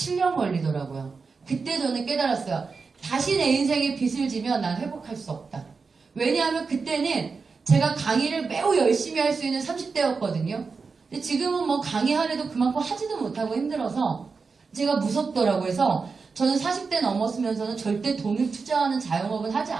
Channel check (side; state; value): left; quieter; 4.8 dB